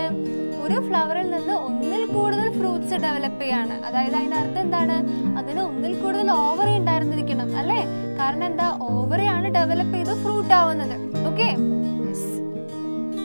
ഒരു ഫ്ലവറിൽ നിന്ന് ഒന്നിൽ കൂടുതൽ ഫ്രൂട്ട്സ് ഡെവലപ്പ് ചെയ്യാണ്. അതായത് അതിന്റെ അർത്ഥം എന്താണ്? അതിന് ഒന്നിൽ കൂടുതൽ ഓവറി ഉണ്ടായിരുന്നിരിക്കണം അല്ലേ. കാരണം എന്താ? ഓവറിയാണ് ഡെവലപ്പ് ചെയ്ത് ഫ്രൂട്ട് ആവുന്നത്. ഓക്കെ,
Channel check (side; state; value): both; inverted; correlation -1.00